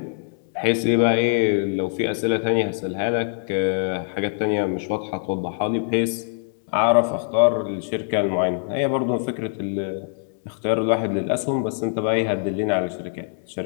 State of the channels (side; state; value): right; silent; 63 dB below the other